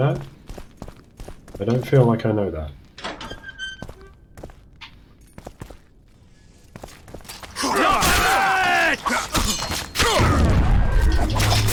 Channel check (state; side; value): identical; both; correlation 1.00